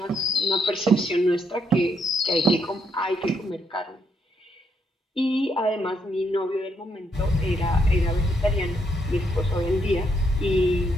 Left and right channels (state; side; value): normal; both; correlation 0.76